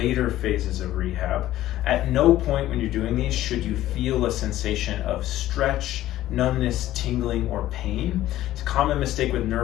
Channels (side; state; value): right; quieter; 14.3 dB